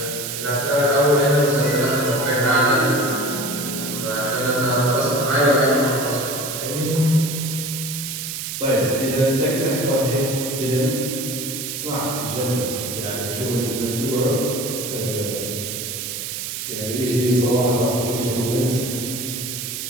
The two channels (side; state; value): right; noise; hiss, 5 dB below the sound